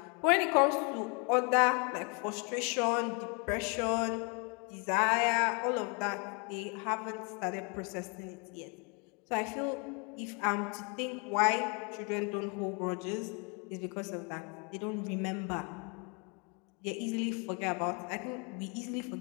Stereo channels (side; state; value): right; quieter; 33.8 dB